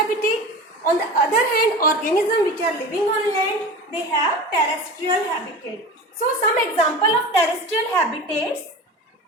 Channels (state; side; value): normal; both; correlation 0.32